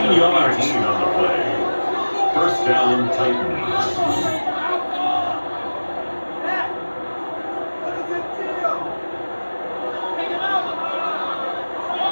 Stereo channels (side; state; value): both; inverted; correlation -1.00